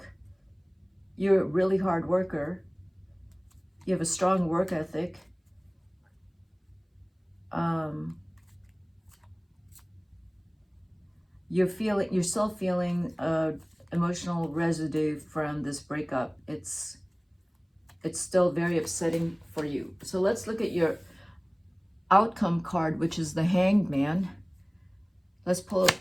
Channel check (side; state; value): both; identical; correlation 1.00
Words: a really hard worker. You have a strong work ethic. You're still feeling emotional residue from this breakup. It's still very upsetting for you. So let's look at your outcome card, which is the Hanged Man. Let's pull it.